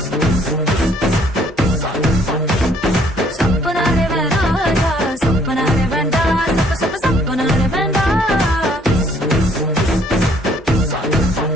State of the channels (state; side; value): normal; both; correlation 0.63